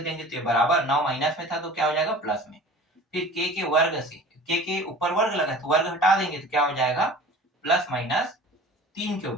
देंगे तो ये बराबर, 9 माइनस में था तो क्या हो जाएगा? प्लस में। फिर k के वर्ग से, k के ऊपर वर्ग लगा तो वर्ग हटा देंगे तो क्या हो जाएगा? प्लस माइनस 3 के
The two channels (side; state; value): both; normal; correlation 0.42